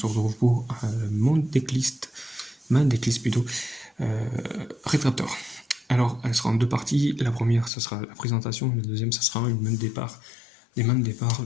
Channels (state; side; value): drops out; right; at 7.7 s